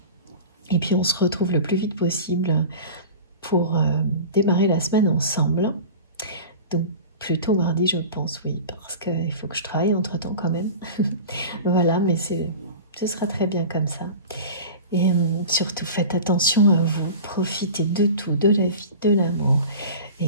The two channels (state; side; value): inverted; both; correlation -0.35